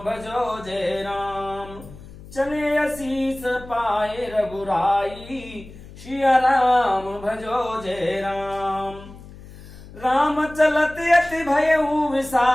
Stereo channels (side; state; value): left; noise; hum, 18 dB below the sound